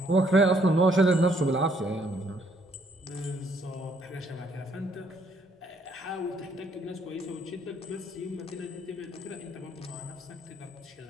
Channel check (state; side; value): normal; both; correlation 0.68